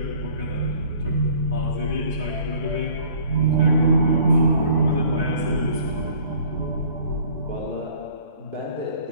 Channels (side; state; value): both; inverted; correlation -0.52